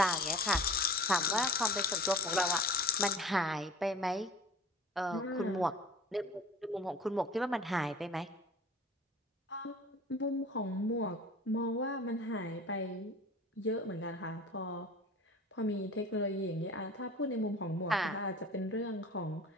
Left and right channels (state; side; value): normal; both; correlation 0.41